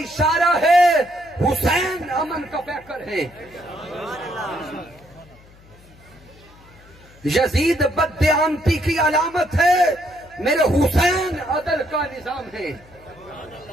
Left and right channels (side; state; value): left; noise; hum, 25 dB below the sound